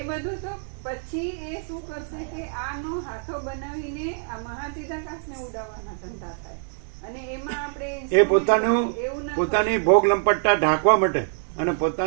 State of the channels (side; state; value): left; silent; 62 dB below the other